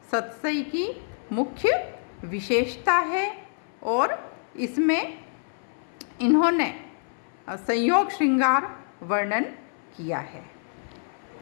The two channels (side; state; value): right; silent; 60 dB below the other